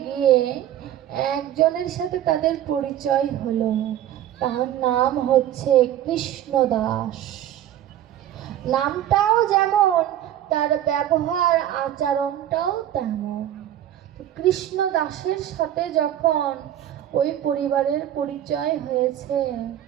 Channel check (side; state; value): left; quieter; 11.7 dB